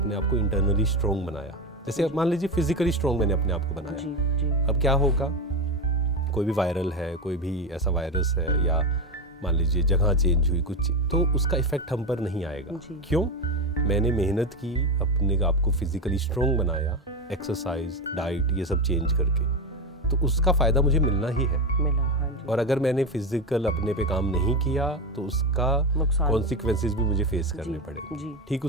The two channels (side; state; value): both; normal; correlation 0.15